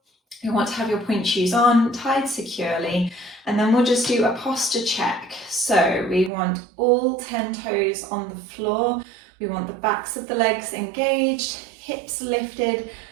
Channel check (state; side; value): drops out; left; at 6.3 s